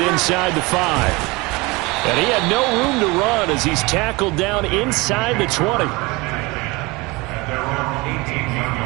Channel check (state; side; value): quieter; left; 24.3 dB